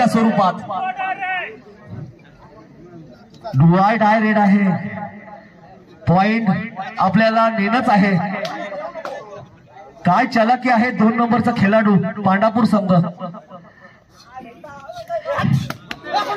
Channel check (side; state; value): both; identical; correlation 1.00